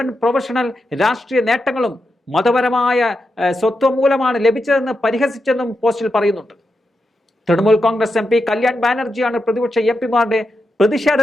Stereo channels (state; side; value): normal; both; correlation 0.87